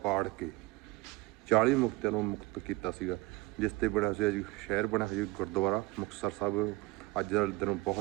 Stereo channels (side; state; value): left; quieter; 21.3 dB